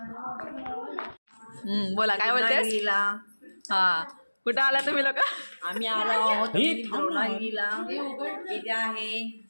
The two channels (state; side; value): inverted; both; correlation -1.00